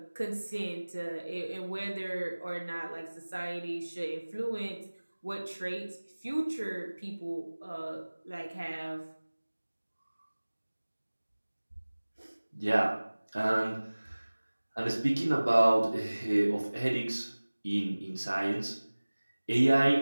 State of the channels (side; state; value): both; inverted; correlation -1.00